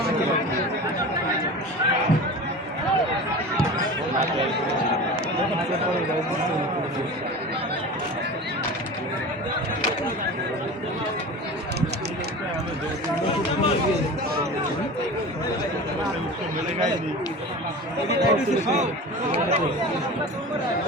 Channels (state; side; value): normal; both; correlation 0.33